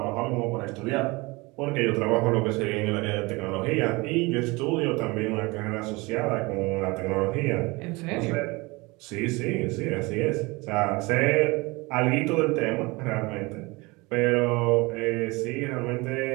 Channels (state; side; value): quieter; left; 24.4 dB